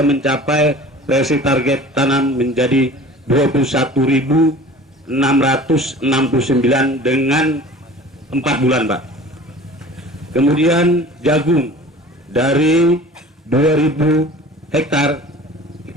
mencapai realisasi target tanam menjadi 21.669 dengan 4 bulan, Pak. Kemudian jagung dari 2.000 hektar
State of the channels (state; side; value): normal; both; correlation 0.43